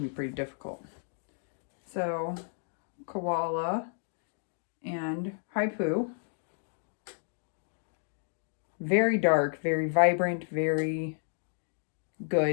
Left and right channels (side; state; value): right; silent; 56 dB below the other